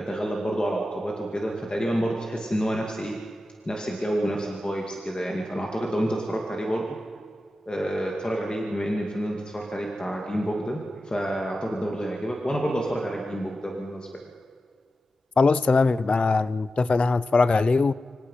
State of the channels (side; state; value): both; normal; correlation 0.92